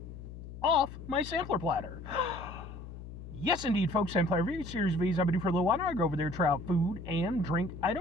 off my sampler platter. Yes, indeed, folks, sampler V, series V's I've been doing for a little while now. I go over there, try out food and drink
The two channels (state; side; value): noise; left; hum, 12 dB below the sound